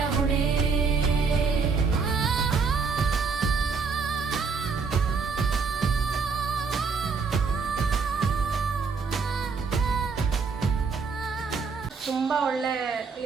ಹೊಣೆ. ತುಂಬ ಒಳ್ಳೆ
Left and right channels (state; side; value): quieter; left; 5.1 dB